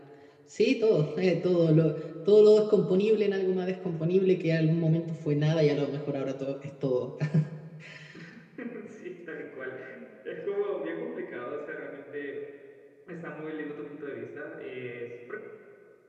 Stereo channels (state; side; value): identical; both; correlation 1.00